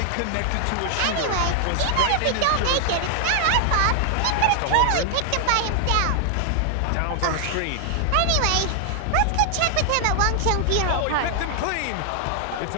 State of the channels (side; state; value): both; different; correlation 0.00